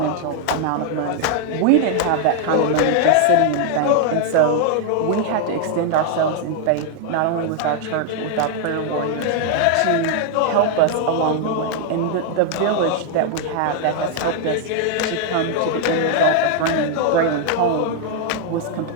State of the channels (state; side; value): different; both; correlation 0.00